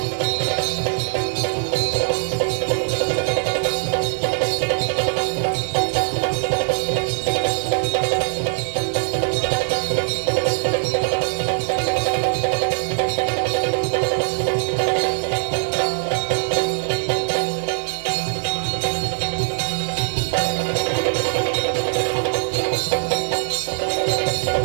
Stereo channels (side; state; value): left; silent; digital silence